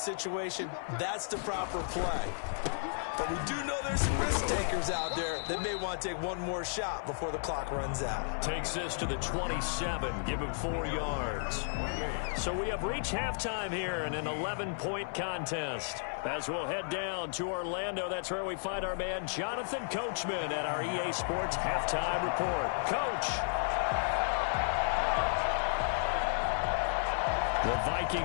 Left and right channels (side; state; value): right; silent; 56 dB below the other